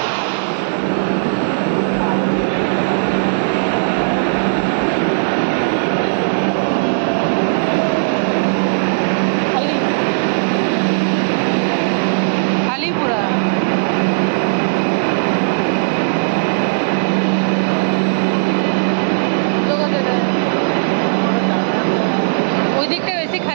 ওই দিকটা বেশি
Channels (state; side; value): silent; left; digital silence